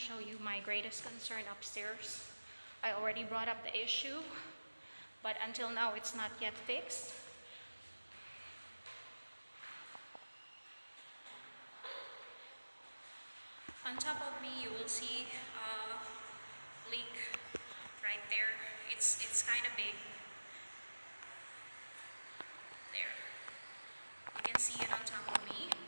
you my greatest concern upstairs. I already brought up the issue, but until now it's not yet fixed. On top of me, you will see a leak right there. It's kind of big. There. You can see it on top of me.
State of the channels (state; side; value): inverted; both; correlation -1.00